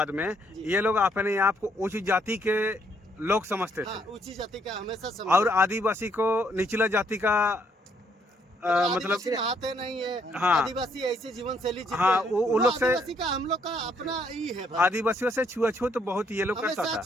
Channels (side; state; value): both; normal; correlation 0.70